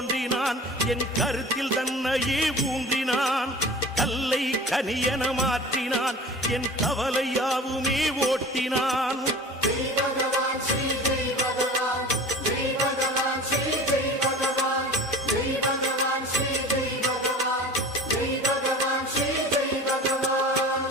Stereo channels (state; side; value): normal; both; correlation 0.40